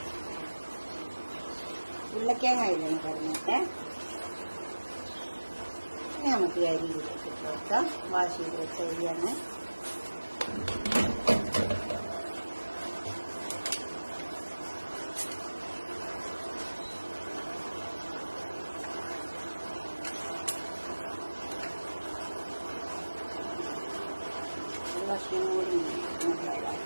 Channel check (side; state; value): both; inverted; correlation -1.00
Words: ഉരുളക്കിഴങ്ങ് അതിലൊന്ന് പറഞ്ഞിട്ട് നമുക്ക് അരി ഇതിലേക്ക് ഇട്ട് കൊടുക്കാം. വാഷ് ചെയ്ത് വെച്ച അരിയാണ്. ഭക്ഷണം കൂടി